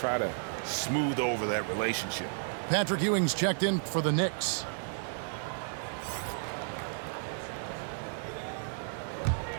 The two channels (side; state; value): left; silent; digital silence